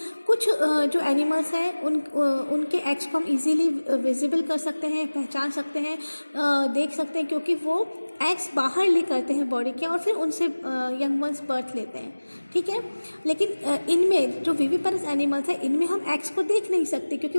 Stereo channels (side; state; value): both; inverted; correlation -1.00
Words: कुछ जो एनिमल्स हैं उनके एग्स को हम इजीली विजिबल कर सकते हैं, पहचान सकते हैं, देख सकते हैं, क्योंकि वो एग्स बाहर ले करते हैं बॉडी के और फिर उनसे यंग वंस बर्थ लेते हैं, ठीक है। लेकिन इनमें जो विविपेरस एनिमल्स हैं इनमें हम एग्स को देख नहीं सकते, क्योंकि